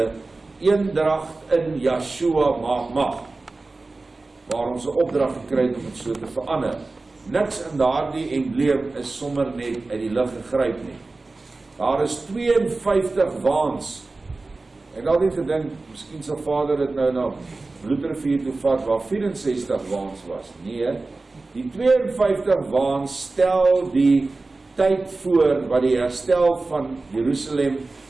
eendracht in Yeshua maak mag, waar ons 'n opdrag gekry het om dit so te verander. Niks in daardie embleem is sommer net uit die lug gegryp nie. Daar is 52 waans. Ek het altyd gedink, miskien sal Vader dit nou na Bloedrivier toe vat, waar 64 waans was. Nee, die 52 waans stel die tyd voor wat die herstel van Jerusalem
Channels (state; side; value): quieter; left; 3.4 dB